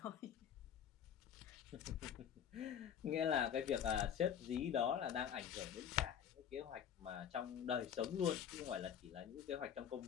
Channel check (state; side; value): quieter; right; 8.7 dB